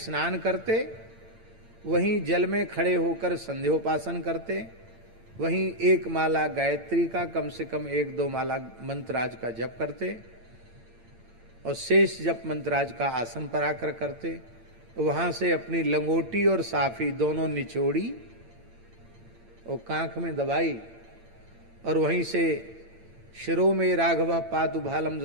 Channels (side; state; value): left; late; 9.0 ms